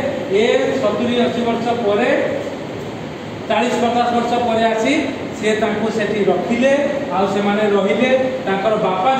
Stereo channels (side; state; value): both; identical; correlation 1.00